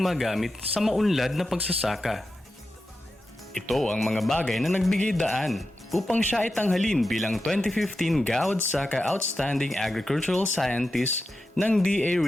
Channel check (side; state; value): both; normal; correlation 0.90